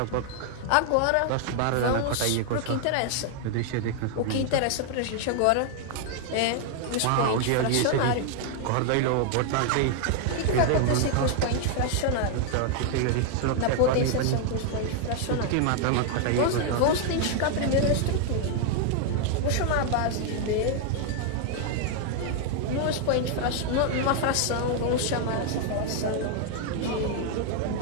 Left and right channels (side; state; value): both; different; correlation 0.00